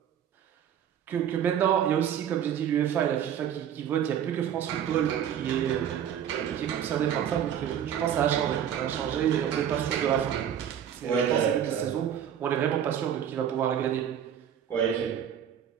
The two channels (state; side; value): quieter; left; 9.4 dB